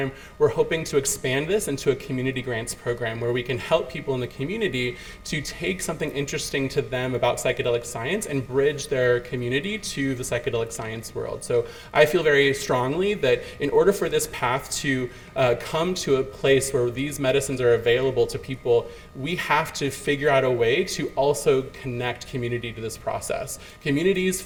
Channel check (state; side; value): identical; both; correlation 1.00